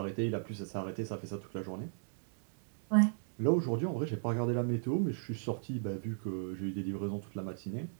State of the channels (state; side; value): silent; left; digital silence